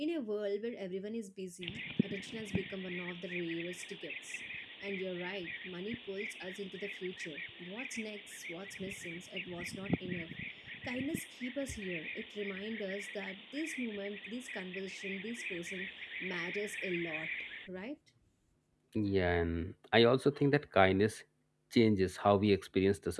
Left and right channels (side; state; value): both; identical; correlation 1.00